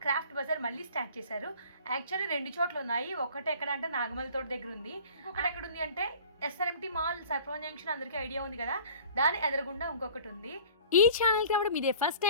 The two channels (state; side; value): inverted; both; correlation -0.47